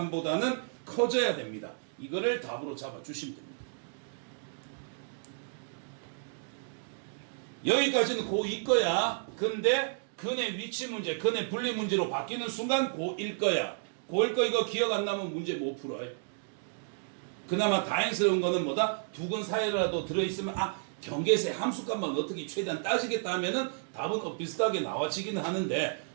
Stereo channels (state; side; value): silent; left; digital silence